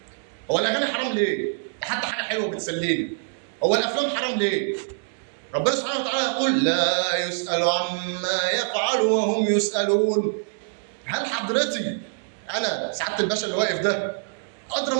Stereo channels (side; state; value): left; silent; digital silence